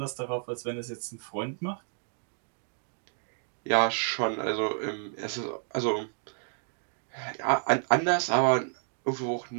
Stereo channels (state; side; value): silent; left; digital silence